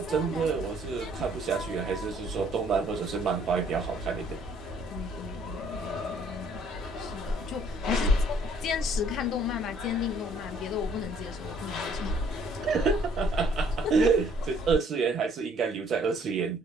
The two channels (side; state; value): both; normal; correlation 0.62